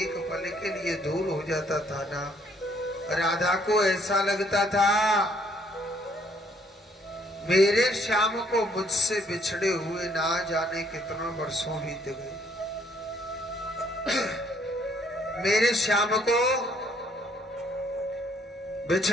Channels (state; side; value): normal; both; correlation 0.65